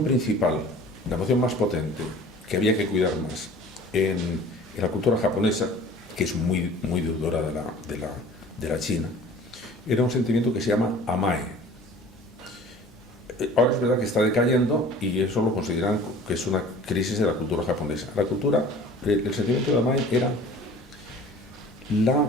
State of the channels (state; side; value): normal; both; correlation 0.46